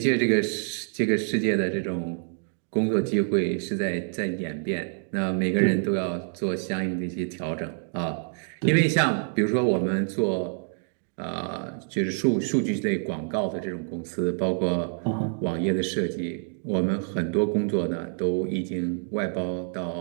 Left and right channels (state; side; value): silent; left; 60 dB below the other